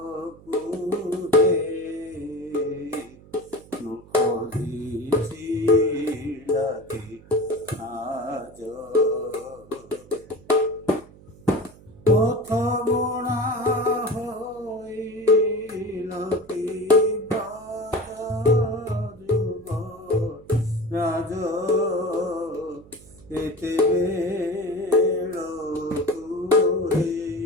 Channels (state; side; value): noise; right; hum, 22 dB below the sound